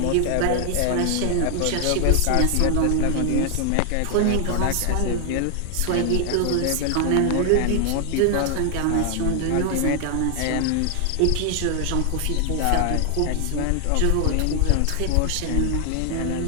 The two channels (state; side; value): different; both; correlation 0.00